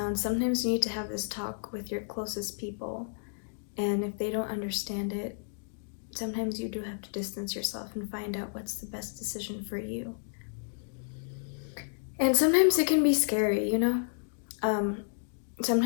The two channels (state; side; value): silent; right; digital silence